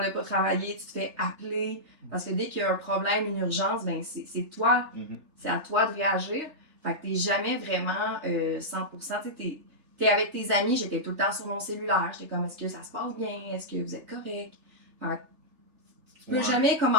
ne pas travailler, tu te fais appeler. Parce que dès qu'il y a un problème, une urgence, ben c'est toi. C'est à toi de réagir. Fait que t'es jamais vraiment 100%. Tu t'es avec tes amis, j'étais tout le temps sur mon cellulaire. J'étais comme, est-ce que ça se passe bien? Est-ce que vous êtes correct? Fait que tu peux jamais comme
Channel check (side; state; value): left; late; 3.4 ms